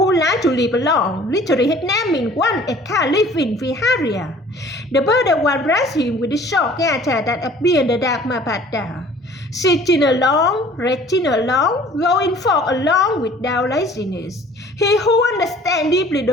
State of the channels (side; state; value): both; normal; correlation 0.50